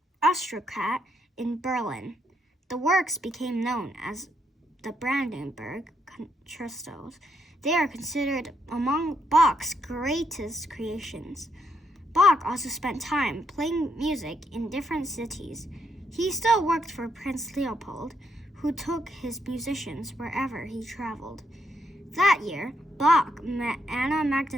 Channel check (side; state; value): both; normal; correlation 0.77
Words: aristocrat in Berlin. The works became known as the Brandenburg Concertos. They are considered among Bach's greatest creations. Bach also spent time playing music in different cities. He still worked for Prince Leopold, who took his musicians wherever he traveled. That year, Bach met Anna